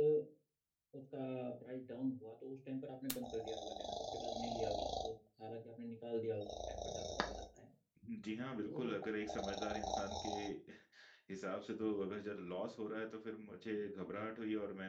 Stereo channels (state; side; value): identical; both; correlation 1.00